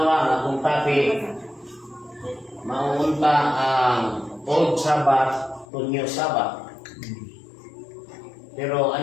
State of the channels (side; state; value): right; drops out; at 5.7 s